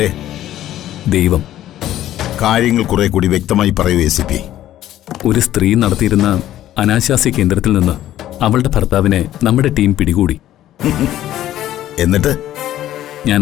ദൈവം. കാര്യങ്ങൾ കുറെ കൂടി വ്യക്തമായി പറയൂ ACP. ഒരു സ്ത്രീ നടത്തിയിരുന്ന അനാശാസ്യ കേന്ദ്രത്തിൽ നിന്ന് അവളുടെ ഭർത്താവിനെ നമ്മുടെ ടീം പിടികൂടി. എന്നിട്ട് ഞാൻ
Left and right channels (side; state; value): right; quieter; 13.0 dB